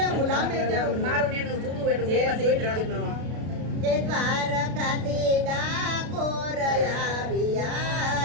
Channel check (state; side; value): late; left; 33 ms